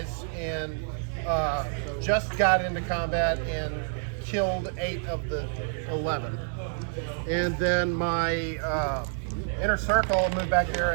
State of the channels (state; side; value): silent; left; digital silence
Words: and just got into combat and killed 8 of the 11. And then my inner circle moved back there